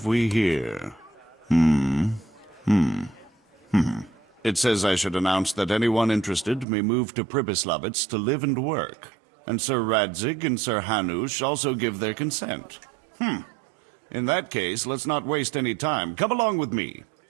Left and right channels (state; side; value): drops out; left; at 6.7 s